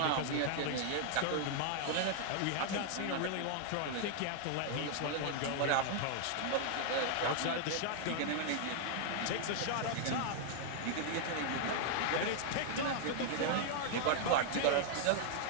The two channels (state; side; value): different; both; correlation 0.00